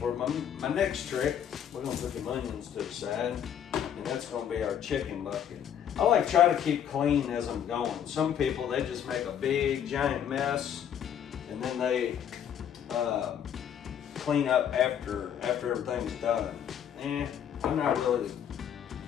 my next trick, we're gonna put the onions to the side, and that's gonna be our chicken bucket. I like try to keep clean as I'm going. Some people, they just make a big giant mess, and then they clean up after everything's done. I'm not really.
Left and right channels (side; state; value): right; quieter; 9.1 dB